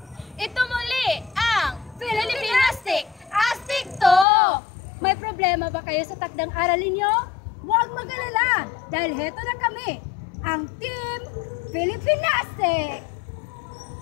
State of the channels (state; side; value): drops out; right; at 4.2 s